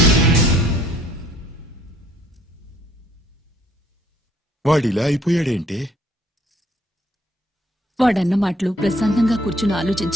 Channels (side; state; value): both; normal; correlation 0.62